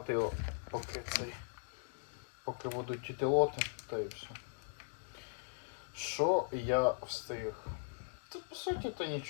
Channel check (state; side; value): silent; right; digital silence